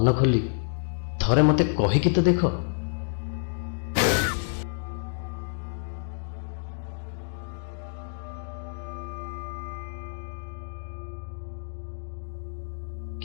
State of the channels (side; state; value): right; silent; digital silence